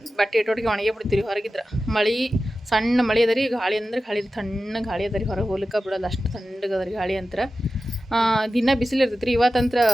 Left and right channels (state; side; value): normal; both; correlation 0.93